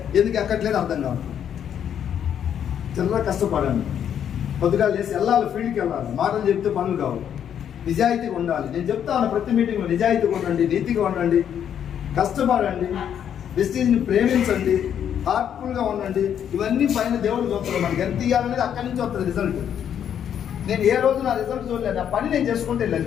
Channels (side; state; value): right; quieter; 9.1 dB